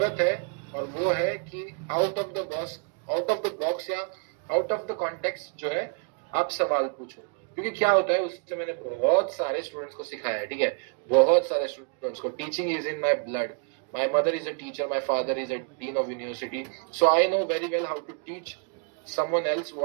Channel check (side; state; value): left; quieter; 39.2 dB